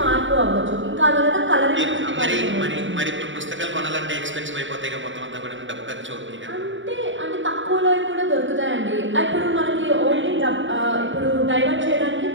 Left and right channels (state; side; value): late; left; 0.55 ms